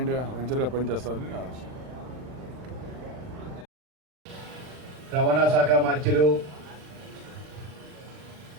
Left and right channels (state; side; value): late; left; 39 ms